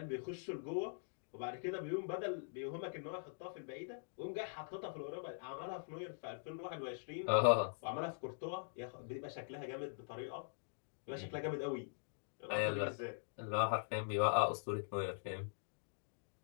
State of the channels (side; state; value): right; silent; digital silence